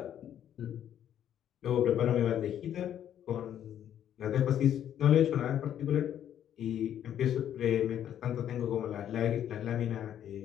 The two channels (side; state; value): right; quieter; 10.3 dB